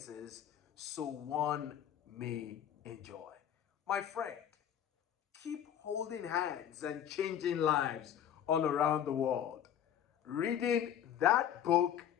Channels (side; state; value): right; quieter; 9.8 dB